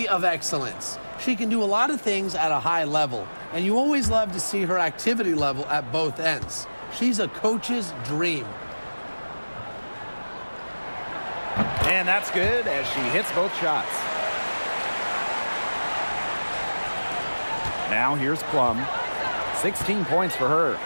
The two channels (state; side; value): inverted; both; correlation -1.00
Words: of excellence. She can do a lot of things at a high level, and you always love to see her activity level at both ends. She's a coach's dream. And that's good as she hits both shots. Now here's Plum. 16 points for her.